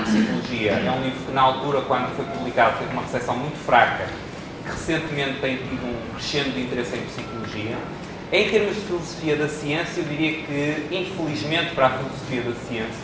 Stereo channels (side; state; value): both; identical; correlation 1.00